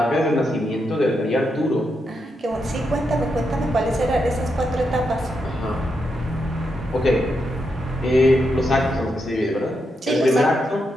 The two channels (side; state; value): both; normal; correlation 0.83